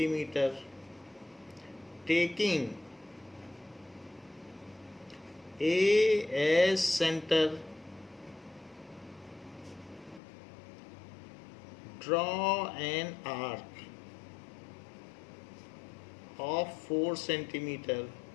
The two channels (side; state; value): right; drops out; at 10.2 s